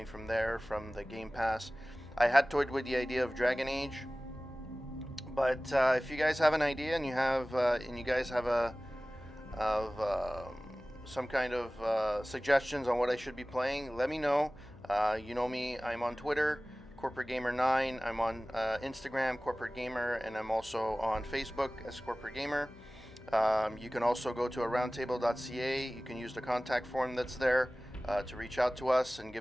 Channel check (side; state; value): left; noise; hum, 21 dB below the sound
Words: from there from the Game Pass. I had toyed with the idea of Dragon Age, but if you guys have an idea and you guys have some kind of suggestions on what I should be playing, let me know. You know me, I'm on Twitter, Corporate Gamer 9. I'm on Instagram, Corporate Gamer, and I'm also on Facebook as Corporate Gamer. You can also go to aroundtable.ca. You can use the contact form that's there to reach out to us and